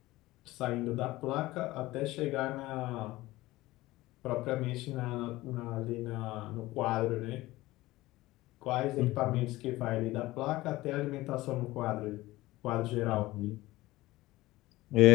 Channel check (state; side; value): quieter; right; 18.3 dB